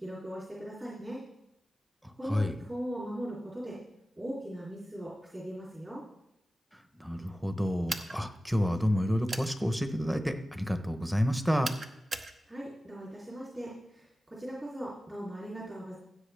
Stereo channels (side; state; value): both; normal; correlation 0.95